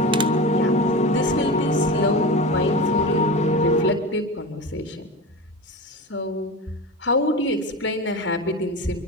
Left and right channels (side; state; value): both; normal; correlation 0.27